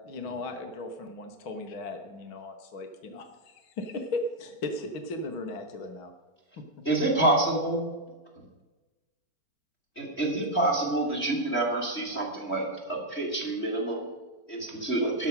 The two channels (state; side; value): late; right; 4.4 ms